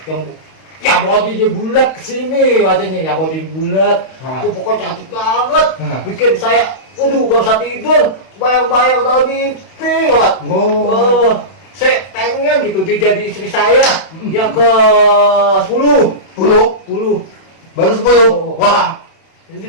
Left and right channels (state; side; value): late; right; 31 ms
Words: bodinya bulat kesini wajahnya, yang bodinya bulat. Ah. Itu pokoknya cantik banget. Ah. Bikin saya, gak bisa tidur. Bayang-bayang dalam mimpi banget. Oh. Saya pengen gitu dia jadi istri saya yang ke 10. 10? Baru 10? Oh. Wah,